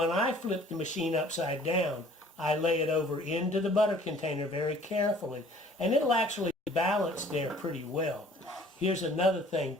I flip the machine upside down, I lay it over into the butter container very carefully, and it'll actually balance there pretty well. Here's another thing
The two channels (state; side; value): normal; both; correlation 0.53